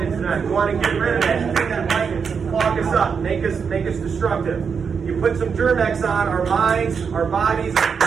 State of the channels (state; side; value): quieter; left; 6.1 dB